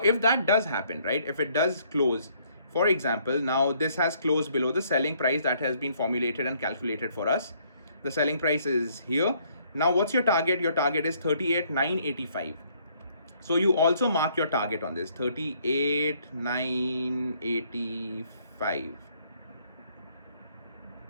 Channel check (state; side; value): inverted; both; correlation -0.66